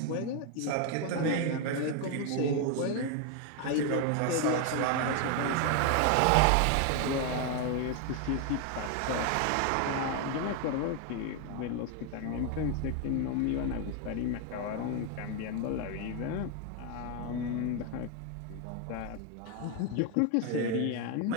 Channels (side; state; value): both; different; correlation 0.01